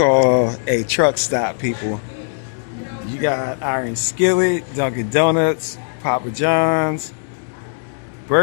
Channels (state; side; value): silent; right; 66 dB below the other